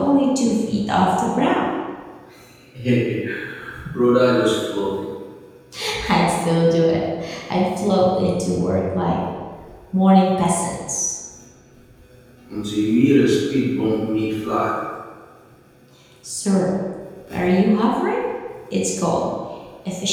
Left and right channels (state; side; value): identical; both; correlation 1.00